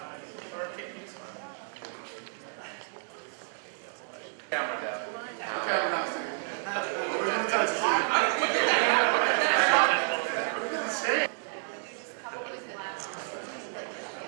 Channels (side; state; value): left; silent; 58 dB below the other